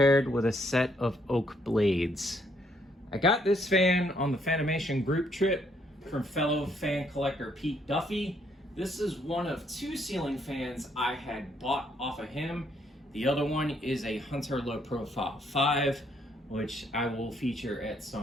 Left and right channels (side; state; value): both; normal; correlation 0.70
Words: with a set of oak blades. I got this fan on the Fanimation group trip from fellow fan collector Pete Duffy. This is one of two ceiling fans I had bought off of him. The other one is a Hunter Low Profile 5, which I will feature at